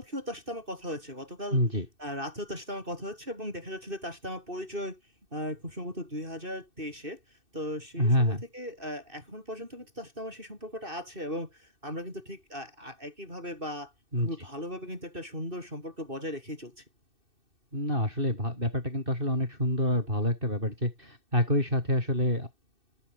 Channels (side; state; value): left; late; 2.6 ms